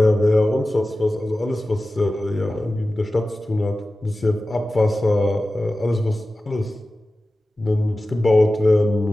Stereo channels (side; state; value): both; normal; correlation 0.95